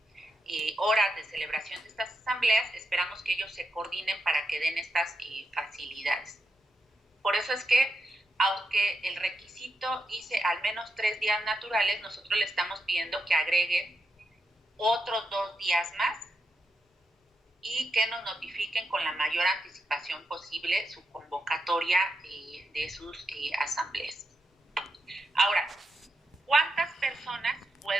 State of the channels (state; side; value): normal; both; correlation 0.85